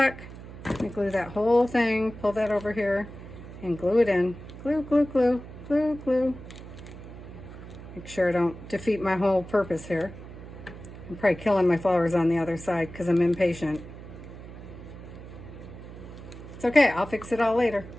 Let me glue that whole thing, pull that over here, and glue it in. Glue, glue, glue, glue, glue. Make sure I don't defeat my whole purpose here. I'm probably killing my flowers on the other side because I'm impatient. It's okay, I'll fix it all later.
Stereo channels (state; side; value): noise; right; hum, 14 dB below the sound